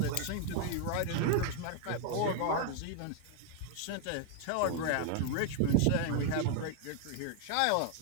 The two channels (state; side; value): different; both; correlation 0.00